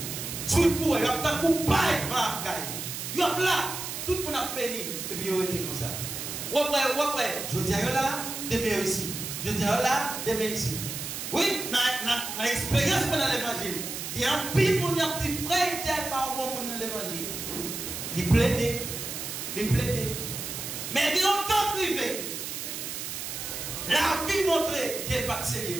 si vous avez un coupable, vous êtes là, tout le monde a béni, et puis vous êtes comme ça. Je dis là, demain ici. Je dis là, demain ici. Oui, dans l'expérience dans l'évangile, il y a un pile de gens qui sont frères tel par bon monde dans l'évangile. Ils plaident. Mais ils ont tant privé. La vie montre qu'elle n'est pas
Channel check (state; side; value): noise; right; hiss, 6 dB below the sound